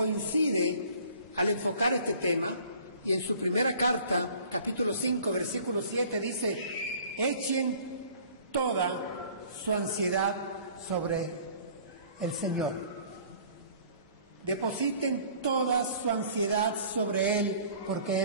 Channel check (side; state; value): both; inverted; correlation -0.51